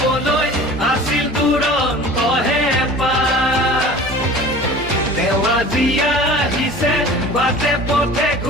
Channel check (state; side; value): normal; both; correlation 0.42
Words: আছিল দুৰন্ত হেঁপাহ তেওঁ আজি আহিছে বাটে পথে